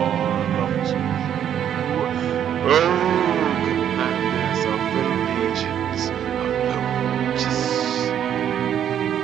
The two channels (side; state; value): left; quieter; 9.7 dB